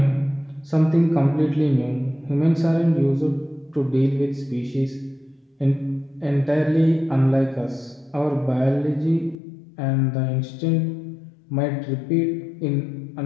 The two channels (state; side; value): drops out; right; at 9.3 s